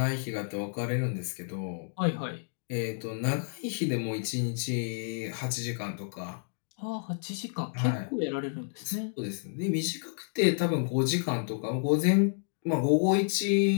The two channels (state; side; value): silent; right; digital silence